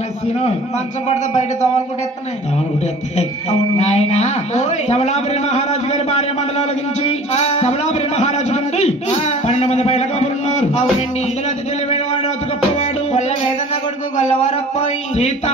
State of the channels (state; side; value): normal; both; correlation 0.45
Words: మంచం పడితే బయట దోవలు కొట్టేస్తున్నాయి అవును నాయన సబలాపురి మహారాజు గారి భార్య మండలం అలగించి సబలాపురి మహారాజు నుండి 12 మంది బయట కబురున్నారు. అవునండి ఇందులో అతి తెలివైన వాడు అతి గొప్పవాడు కొల్ల వేదన్న కొడుకు గొల్లవారప్పాయి